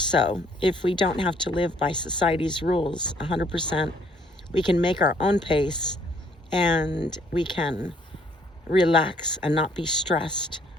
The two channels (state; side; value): normal; both; correlation 0.64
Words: if we don't have to live by society's rules 100%. We can make our own pace, and we can relax and not be stressed